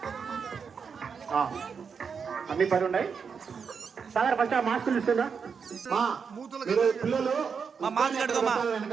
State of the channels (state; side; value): quieter; left; 6.1 dB